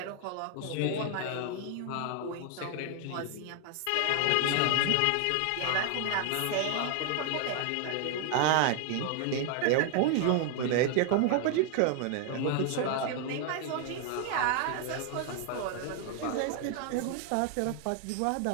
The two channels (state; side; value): different; both; correlation 0.00